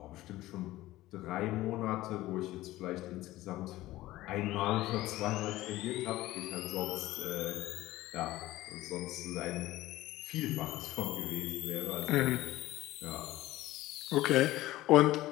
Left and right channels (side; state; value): right; quieter; 16.7 dB